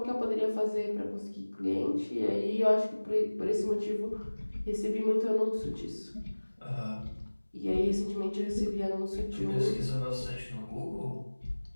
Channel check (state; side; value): inverted; both; correlation -1.00